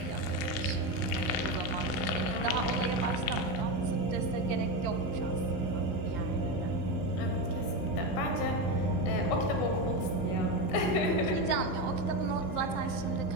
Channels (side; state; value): right; late; 16 ms